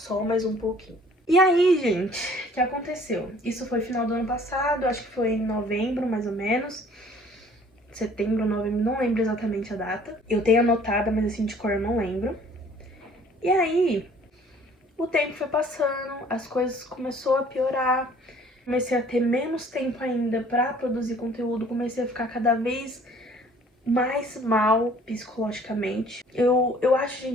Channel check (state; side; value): normal; both; correlation 0.55